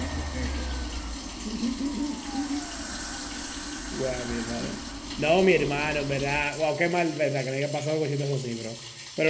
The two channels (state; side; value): identical; both; correlation 1.00